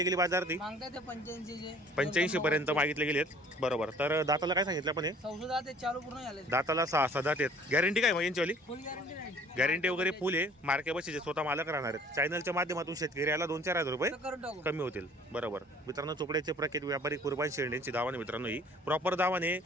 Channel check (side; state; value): both; normal; correlation 0.52